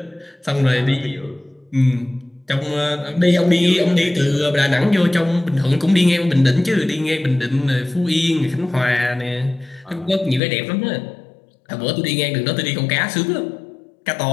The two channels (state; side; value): drops out; right; at 10.4 s